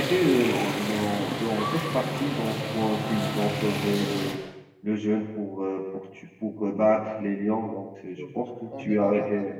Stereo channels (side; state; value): both; identical; correlation 1.00